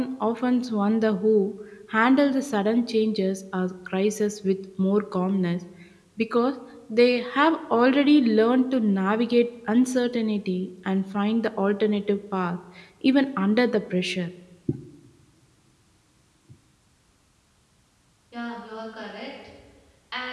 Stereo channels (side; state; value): both; identical; correlation 1.00